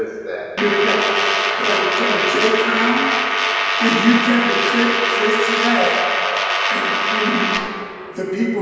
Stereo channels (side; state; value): both; identical; correlation 1.00